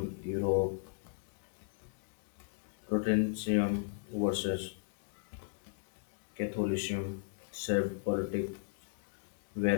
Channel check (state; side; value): silent; right; digital silence